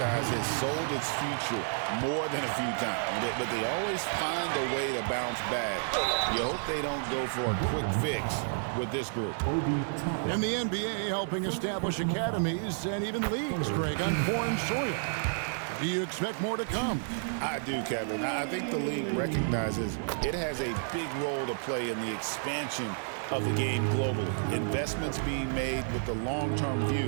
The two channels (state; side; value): silent; left; digital silence